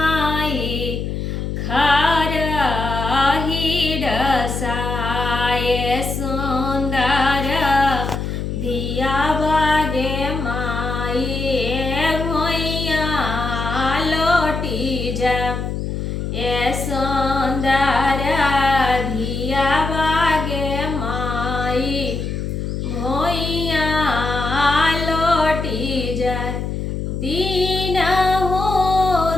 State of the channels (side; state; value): left; noise; hum, 3 dB below the sound